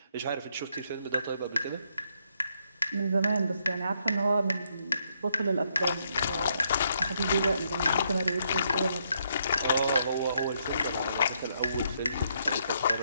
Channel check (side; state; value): both; inverted; correlation -0.75